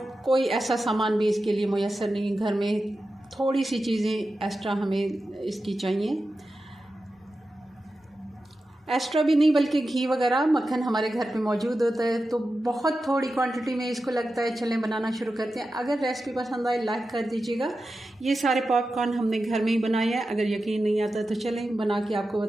कोई ऐसा सामान भी इसके लिए मुयस्सर नहीं। घर में थोड़ी सी चीज़ें एक्स्ट्रा हमें इसकी चाहिए, एक्स्ट्रा भी नहीं बल्कि घी वगैरह मक्खन हमारे घर पे मौजूद होता है, तो बहुत थोड़ी क्वांटिटी में इसको लगता है। चलें बनाना शुरू करते हैं। अगर रेसिपी पसंद आए लाइक कर दीजिएगा। ये सारे पॉपकॉर्न हमने घर में ही बनाए हैं। अगर यकीन नहीं आता तो चलें बना के आपको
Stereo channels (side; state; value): both; normal; correlation 0.92